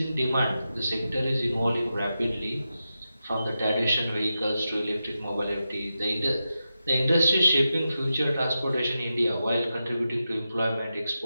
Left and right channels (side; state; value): both; inverted; correlation -0.90